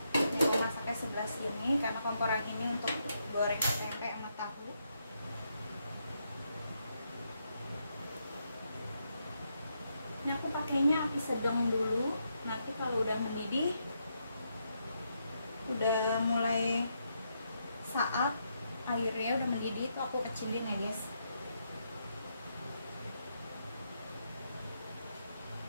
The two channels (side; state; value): both; inverted; correlation -0.80